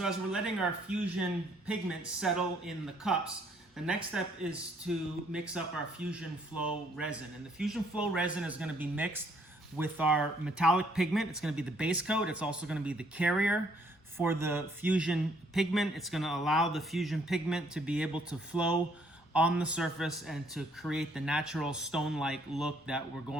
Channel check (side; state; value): both; normal; correlation 0.66